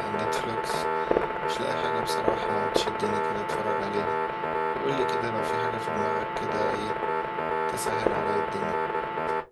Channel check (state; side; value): identical; both; correlation 1.00